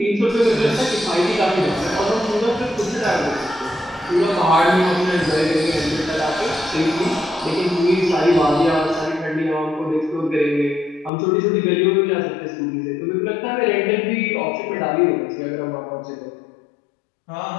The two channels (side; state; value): right; drops out; at 11.1 s